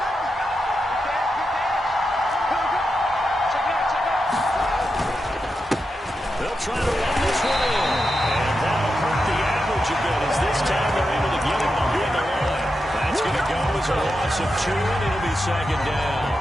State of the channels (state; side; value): normal; both; correlation 0.88